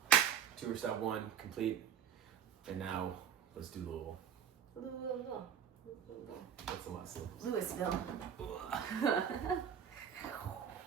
Tour stop 1 complete. And now let's do Louisville. That's a lot of syllables. Louisville.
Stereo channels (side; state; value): left; quieter; 8.5 dB